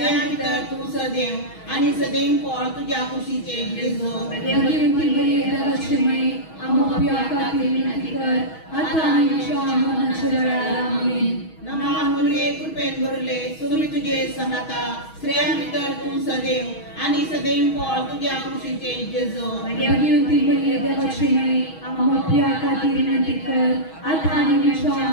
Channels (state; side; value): late; right; 6.3 ms